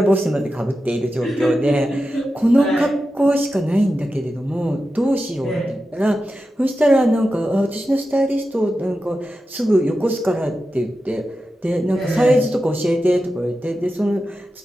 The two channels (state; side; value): normal; both; correlation 0.91